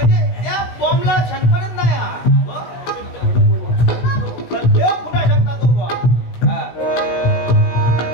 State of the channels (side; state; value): right; late; 16 ms